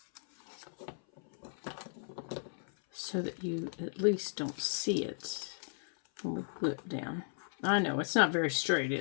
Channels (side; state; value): right; silent; 54 dB below the other